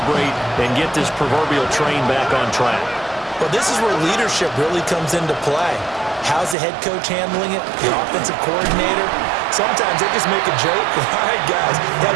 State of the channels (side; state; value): left; drops out; at 6.6 s